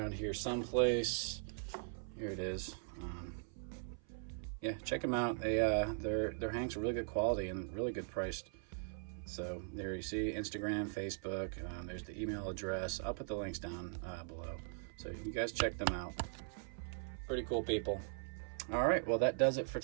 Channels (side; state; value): left; silent; 51 dB below the other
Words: here someplace. Here it is. Yeah, check them out. Their hanks are really good quality and really good priced. So there you see Instagram, Facebook. There's the email address. I'll put the links down below. So you guys check them out. Pretty cool people. All right, well, that does it for